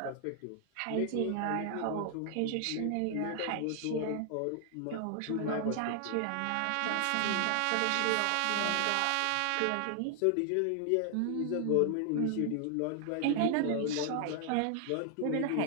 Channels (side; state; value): both; different; correlation 0.00